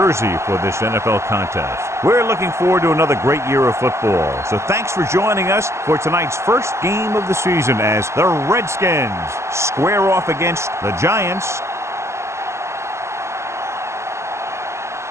for this NFL contest. We're looking forward to another great year of football. So thanks for joining us for tonight's first game of the season as the Redskins square off against the Giants.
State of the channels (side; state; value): left; late; 0.13 ms